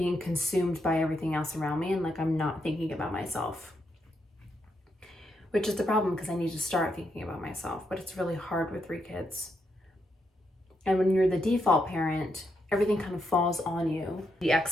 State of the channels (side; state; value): both; normal; correlation 0.80